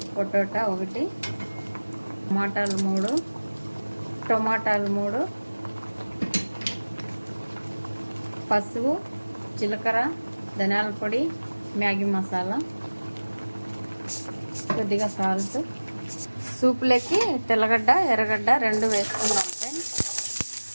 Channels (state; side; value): inverted; both; correlation -1.00